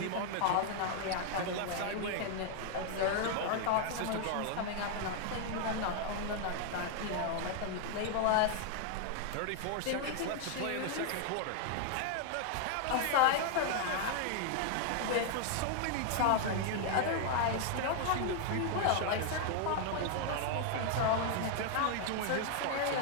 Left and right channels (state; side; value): different; both; correlation 0.00